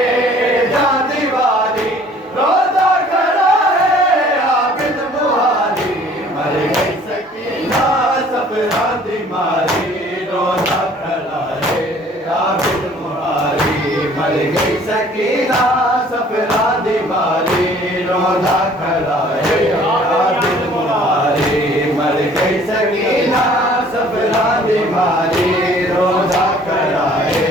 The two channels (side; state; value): both; normal; correlation 0.54